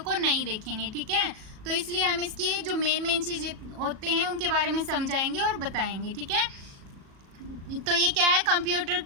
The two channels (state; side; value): late; left; 37 ms